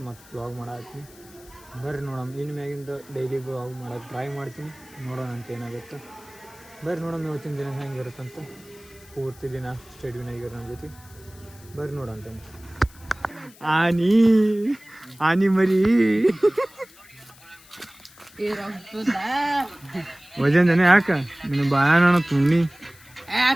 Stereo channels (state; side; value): noise; left; hiss, 24 dB below the sound